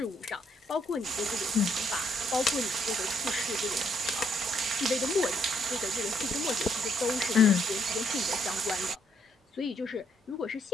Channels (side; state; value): both; normal; correlation 0.70